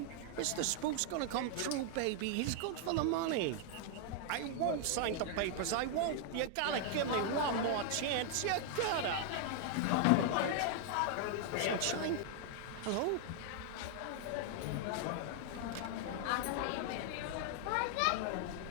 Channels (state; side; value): different; both; correlation 0.00